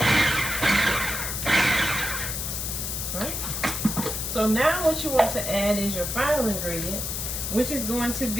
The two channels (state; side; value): noise; left; hiss, 3 dB below the sound